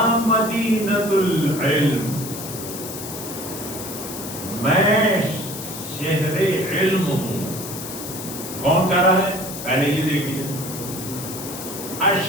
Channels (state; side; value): noise; left; hiss, 9 dB below the sound